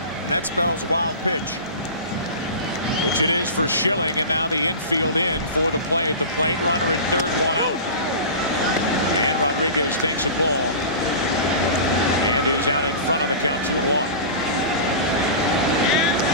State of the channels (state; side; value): inverted; both; correlation -0.32